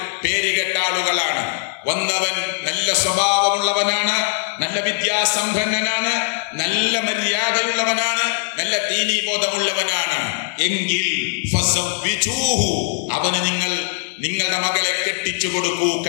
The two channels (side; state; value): right; silent; digital silence